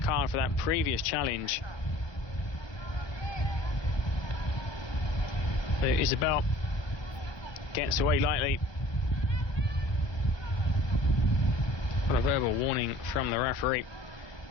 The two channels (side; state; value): right; late; 1.2 ms